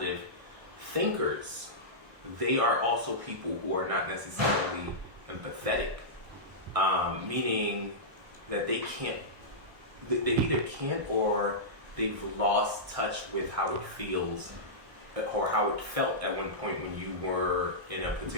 thinkers, they are also people who are not necessarily empathetic, meaning that they either can't or they've lost touch with how it feels or how it felt at one point when you were in a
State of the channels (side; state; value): left; late; 1.6 ms